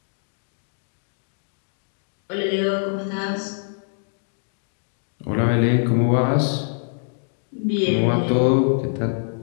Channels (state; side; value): silent; right; 63 dB below the other